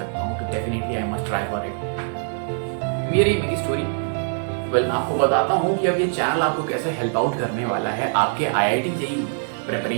हूं तो definitely I must try for it. मेरी स्टोरी। मैं आपको बताता हूँ कि अब ये चैनल आपको कैसे हेल्प आउट करने वाला है आपके आईआईटी जेईई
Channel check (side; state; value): left; silent; 63 dB below the other